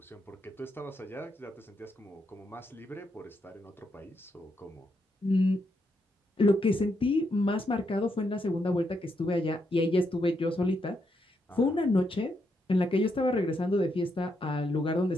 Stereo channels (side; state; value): both; normal; correlation 0.80